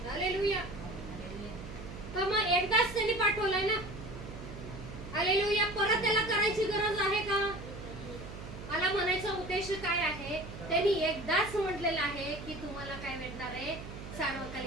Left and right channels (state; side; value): noise; right; hum, 11 dB below the sound